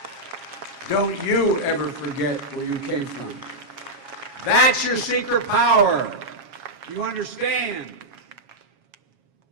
Don't you ever forget where you came from. That's your secret power. You understand?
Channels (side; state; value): left; late; 7.3 ms